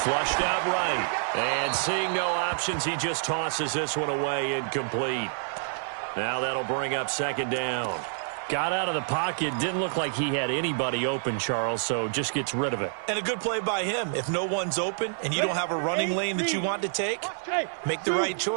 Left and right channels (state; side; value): silent; left; 60 dB below the other